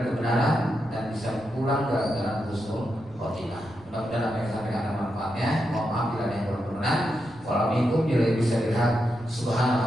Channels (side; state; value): right; noise; rumble, 23 dB below the sound